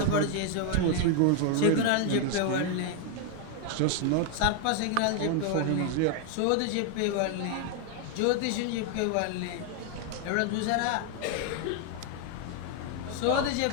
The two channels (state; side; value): different; both; correlation 0.00